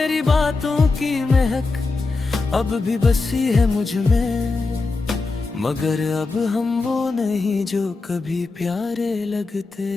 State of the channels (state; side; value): quieter; right; 3.8 dB